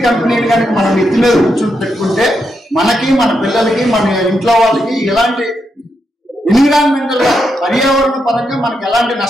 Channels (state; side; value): normal; both; correlation 0.82